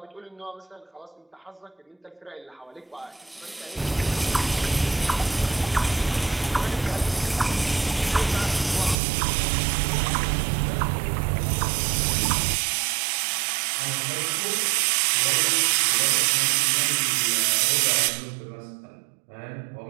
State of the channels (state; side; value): drops out; left; at 9.0 s